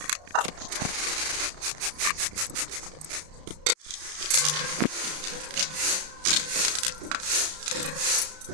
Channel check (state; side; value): late; left; 33 ms